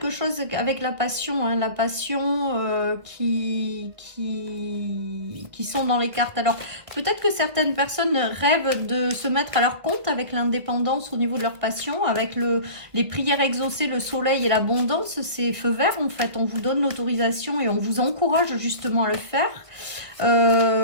chose avec la passion. Hein, la passion qui sont dans les cartes. Alors, peut-être que certaines personnes rêvent de se mettre à leur compte avec l'indépendance au niveau de leur passion. Avec les prières exaucées, le soleil et l'abondance, c'est feu vert, en fait. On vous donne l'autorisation et on vous encourage justement à le faire.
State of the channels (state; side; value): late; left; 1.9 ms